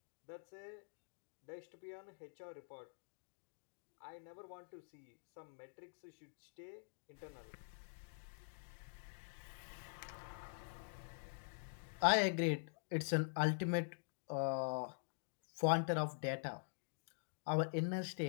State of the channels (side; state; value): right; silent; digital silence